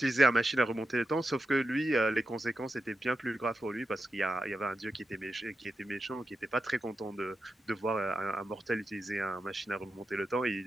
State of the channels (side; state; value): both; normal; correlation 0.89